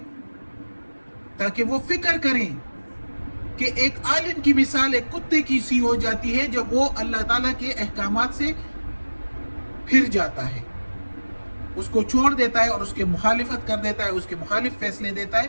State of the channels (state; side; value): inverted; both; correlation -1.00